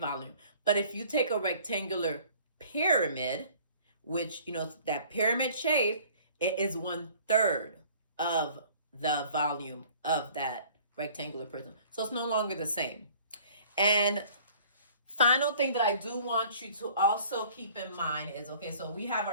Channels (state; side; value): inverted; both; correlation -0.52